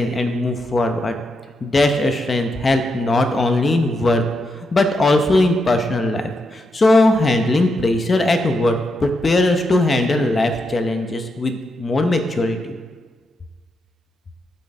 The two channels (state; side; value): normal; both; correlation 0.83